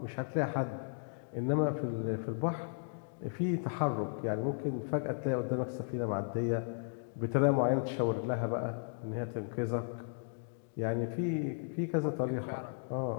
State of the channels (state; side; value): silent; right; digital silence